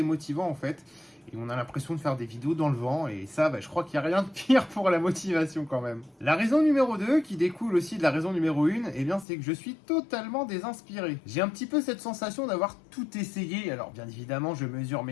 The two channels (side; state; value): right; drops out; at 9.2 s